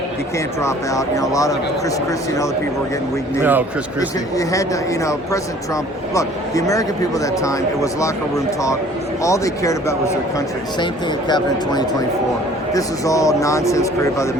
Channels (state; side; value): normal; both; correlation 0.52